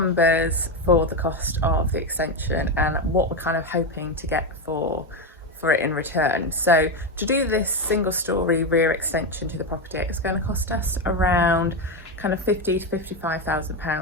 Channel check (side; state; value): both; normal; correlation 0.12